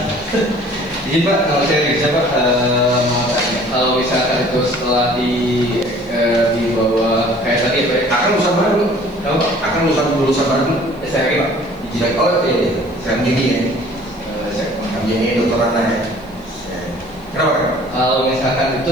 Jadi Pak, kalau saya bisa Pak, mau tanya, kalau misalkan itu setelah dibawa kayak tadi Pak, Akan lulusan baru, akan lulusan baru. saya lagi Pak, Oh iya, saya gini ya, saya ini dokter Ana ya. Kenapa? kalau misalkan itu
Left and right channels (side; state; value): left; noise; hiss, 29 dB below the sound